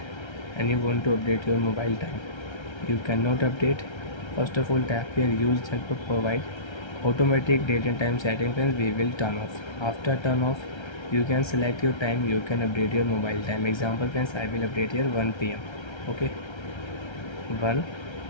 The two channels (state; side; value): late; right; 1.3 ms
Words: and you want to update your mobile time. You cannot update. First of all, tap here use and provide automatic date and time setting. Friends, we will turn off. After turn off, you can select your time, you can update your mobile time. Example friends, I will update here 1 p.m. okay, 1